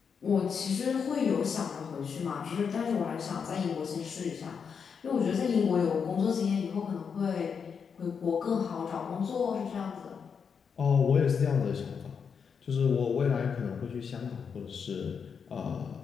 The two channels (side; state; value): right; quieter; 6.4 dB